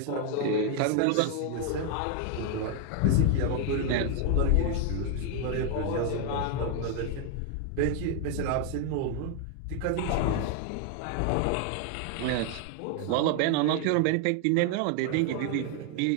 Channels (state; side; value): different; both; correlation 0.01